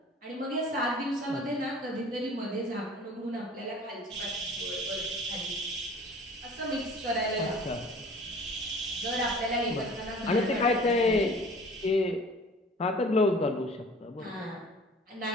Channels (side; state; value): both; normal; correlation 0.47